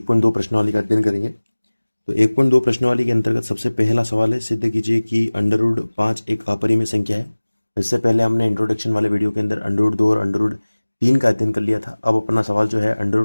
प्रश्नावली का अध्ययन करेंगे। तो 1.2 प्रश्नावली के अंतर्गत सबसे पहला सवाल है, सिद्ध कीजिए कि अंडर रूट 5 एक अपरिमेय संख्या है। इससे पहले हमने इंट्रोडक्शन वाले वीडियो के अंदर अंडर रूट 2 और अंडर रूट 3 का अध्ययन कर लिया था। अब अपना सवाल जो है अंडर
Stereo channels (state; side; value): inverted; both; correlation -1.00